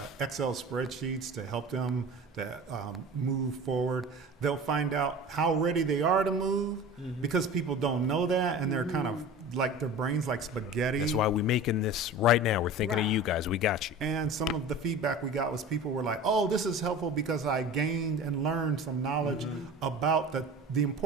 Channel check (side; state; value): both; normal; correlation 0.36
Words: Excel spreadsheets to help them to move forward. They'll find out how ready they are to move because people don't know that, and they're kind of like their brains like spaghetti. That's why we're making this right now. We're thinking of you guys. We got you. And some of the feedback we got was people were like, oh, this is helpful because I gained and learned some knowledge about the